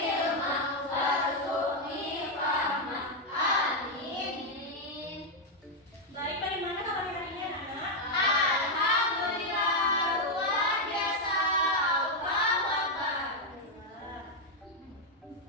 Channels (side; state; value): both; normal; correlation 0.01